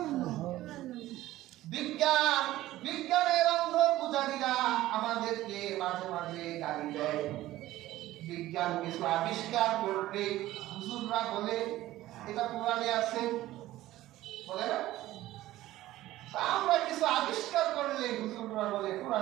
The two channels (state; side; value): quieter; left; 15.6 dB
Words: বিজ্ঞানের অন্ধ পূজারীরা আমাদেরকে মাঝে মাঝে গালি দেয়। বিজ্ঞান কিছু আবিষ্কার করবে, হুজুররা বলে এটা কোরআনে আছে, বলে না? আমরা কিছু আবিষ্কার করলে হুজুররা বলে